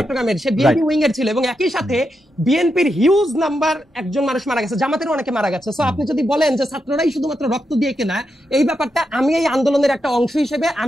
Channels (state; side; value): normal; both; correlation 0.85